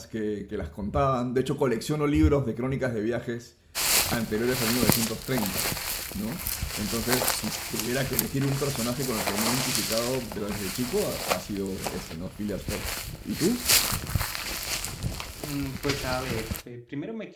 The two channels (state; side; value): identical; both; correlation 1.00